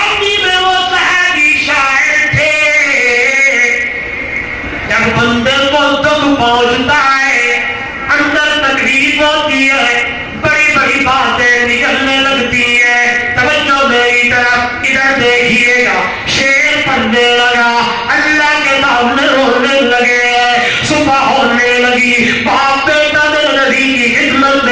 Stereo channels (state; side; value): identical; both; correlation 1.00